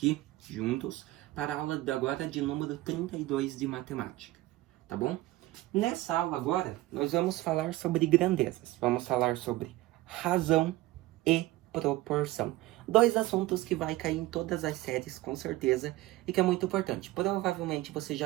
juntos para a aula de agora de número 32 de matemática, tá bom? Nessa aula agora, nós vamos falar sobre grandezas. Vamos falar sobre razão e proporção. Dois assuntos que vai cair em todas as séries, com certeza, e que é muito importante. Provavelmente você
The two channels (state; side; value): quieter; left; 18.0 dB